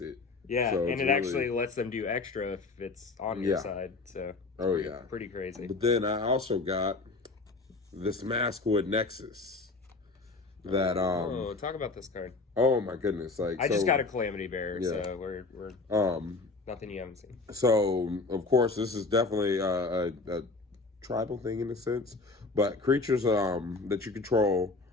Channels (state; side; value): quieter; right; 3.7 dB